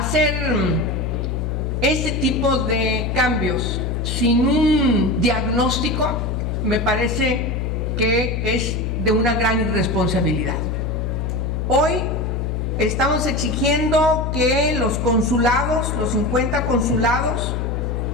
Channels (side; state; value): left; noise; hum, 1 dB below the sound